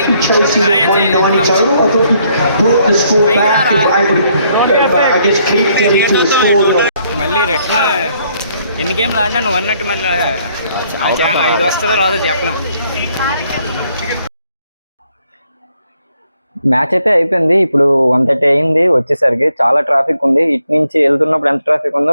Chelsea at 190 title. I thought you brought the score back. If I would, I guess, keep getting to the score. మళ్ళీ retina ఎన్ని గేమ్లు ఆడినా నువ్వు అన్నట్టు మళ్ళీ 5 వస్తుందో రాదో చెప్పలేం. మ్యాచ్ అయితే అయిపోయింది. ఇప్పుడు 1:30 అయింది. వచ్చేసరికి చాలా ట్రాఫిక్ ఉంది. ఇటు నుంచి వెళ్తున్నప్పుడు ఎంత ట్రాఫిక్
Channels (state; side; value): inverted; both; correlation -0.70